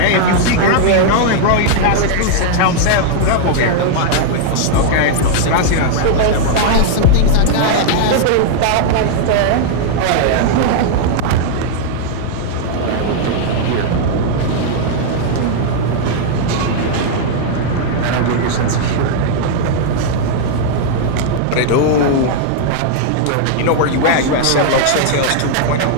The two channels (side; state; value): both; different; correlation -0.01